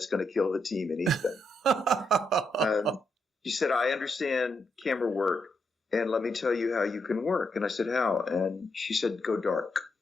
going to kill the team in Ethan. She said, I understand camera work, and let me tell you how you can work. And I said, how? And she said, go dark.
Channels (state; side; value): normal; both; correlation 0.80